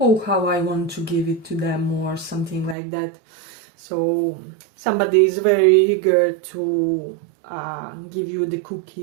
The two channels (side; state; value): left; drops out; at 2.8 s